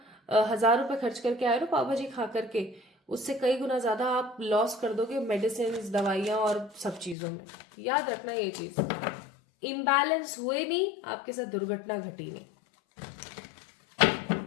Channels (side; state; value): right; drops out; at 7.2 s